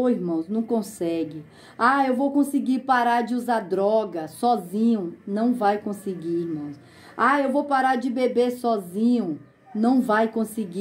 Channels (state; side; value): identical; both; correlation 1.00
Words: Irmãos, não consegue. Eu vou conseguir parar de usar droga sozinho. Não vai conseguir, irmãos. Eu vou parar de beber sozinho. Não vai